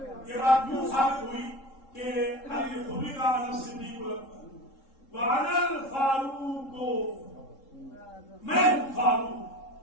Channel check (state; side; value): late; right; 3.7 ms